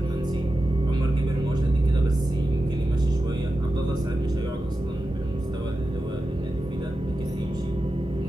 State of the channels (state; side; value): normal; both; correlation 0.92